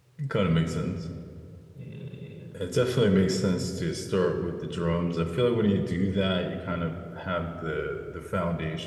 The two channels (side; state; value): both; identical; correlation 1.00